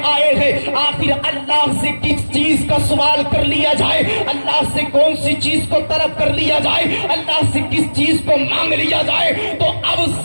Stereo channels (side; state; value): both; inverted; correlation -1.00